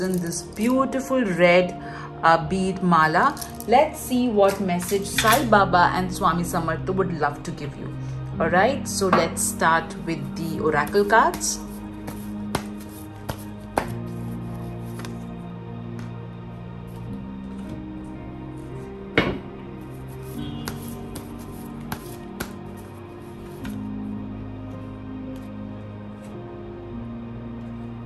this beautiful red bead mala, let's see what message Sai Baba and Swami Samartha would love to give you. All right, so let's start with the oracle cards.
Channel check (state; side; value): identical; both; correlation 1.00